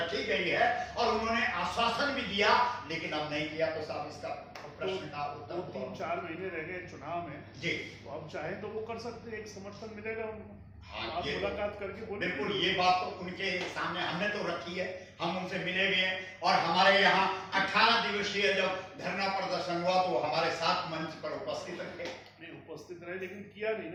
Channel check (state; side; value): identical; both; correlation 1.00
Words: गई है और उन्होंने आश्वासन भी दिया, लेकिन अब नहीं किया। तो साहब इसका प्रश्न का उत्तर 3-4 महीने रह गए चुनाव में जी, तो अब चाहे तो वो कर सकते, एक समर्थन मिलेगा उनको। हाँ, आप मुलाकात करके बोले। बिल्कुल, ये बात तो उनके सामने हमने तो रखी है, हम उनसे मिले भी हैं और हमारे यहाँ 18 दिवसीय जब धरना प्रदर्शन हुआ तो हमारे साथ मंच पर उपस्थित रहे। नहीं उपस्थित रहे लेकिन किया नहीं